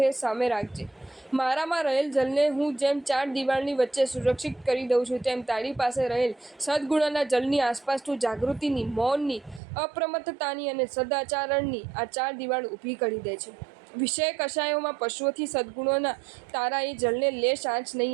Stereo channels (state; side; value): drops out; left; at 9.6 s